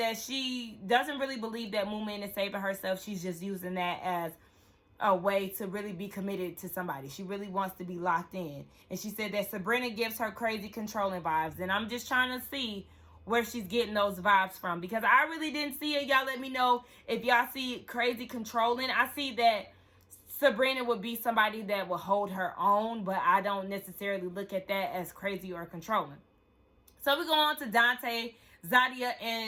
she doesn't really believe that Moomin is saving herself. She's just using that as a way to really be committed to somebody. She really wants to be locked in. And she said that Sabrina gives her crazy controlling vibes. And I'm just trying to see where she's getting those vibes from. Because I really didn't see it. Y'all let me know if y'all see crazy controlling. I see that Sabrina would be somebody that will hold her own. But I don't necessarily look at that as crazy or controlling. So we go on to Dante, Zadia,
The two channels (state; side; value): identical; both; correlation 1.00